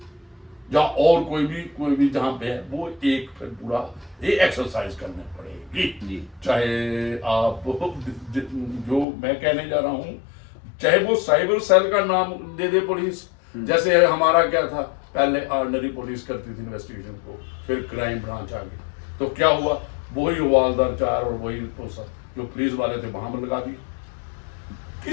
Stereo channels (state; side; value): drops out; right; at 9.1 s